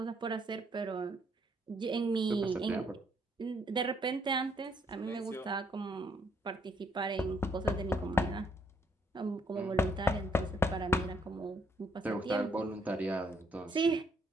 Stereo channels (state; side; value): normal; both; correlation 0.70